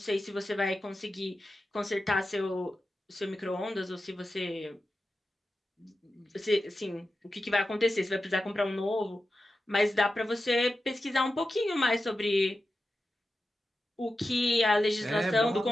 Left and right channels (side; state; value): both; normal; correlation 0.92